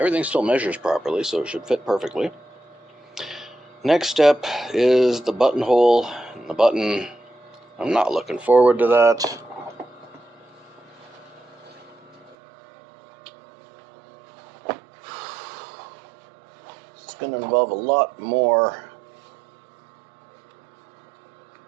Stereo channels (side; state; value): left; drops out; at 12.4 s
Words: still measures properly, so it should fit perfectly. Next step is the buttonhole and the button. I'm not looking forward to that. It's going to involve a lot more